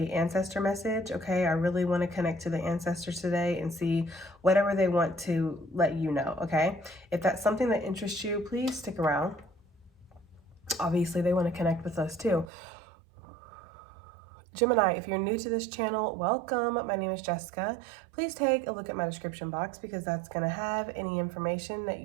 ancestor message, okay? I really want to connect to the ancestors today and see whatever they want to let you know, okay? If that's something that interests you, please stick around. Obviously they want to connect with us too. Gemini, if you're new to this channel, welcome. My name is Jessica. Please take a look at my description box because that's going to have any information that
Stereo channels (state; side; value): drops out; left; at 12.5 s